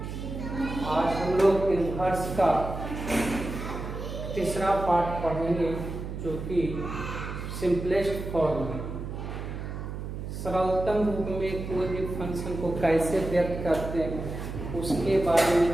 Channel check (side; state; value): right; noise; hum, 7 dB below the sound